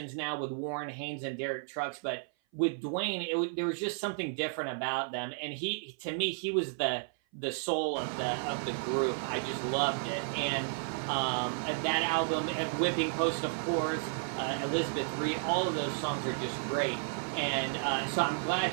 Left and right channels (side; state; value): left; silent; 56 dB below the other